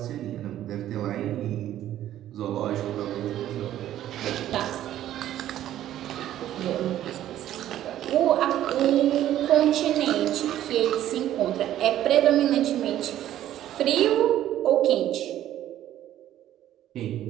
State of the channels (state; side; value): quieter; left; 12.4 dB